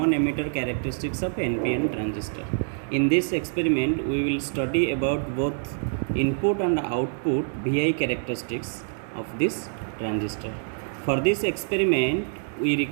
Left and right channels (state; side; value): silent; left; digital silence